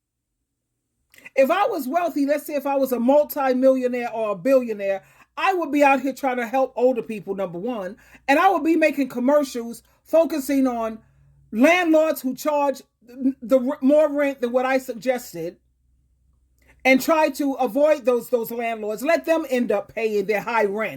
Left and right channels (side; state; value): both; identical; correlation 1.00